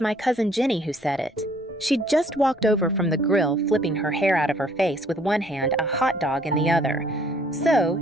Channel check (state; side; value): normal; both; correlation 0.60